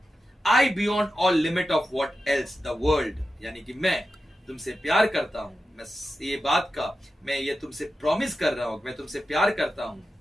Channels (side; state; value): both; normal; correlation 0.91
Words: I beyond all limit of what else the world, यानी कि मैं तुमसे प्यार करता हूं, मैं ये बात का मैं ये तुमसे प्रॉमिस कर रहा हूं, मैं तुमसे प्यार करता हूं।